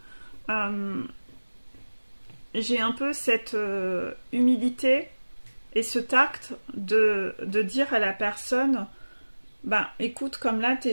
j'ai un peu cette humilité et ce tact de dire à la personne, bah écoute, comme là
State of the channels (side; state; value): both; inverted; correlation -1.00